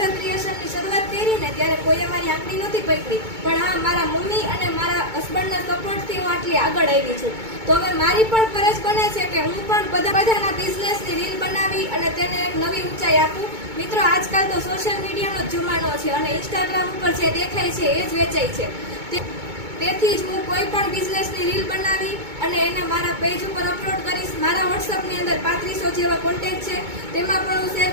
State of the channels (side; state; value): left; late; 2.2 ms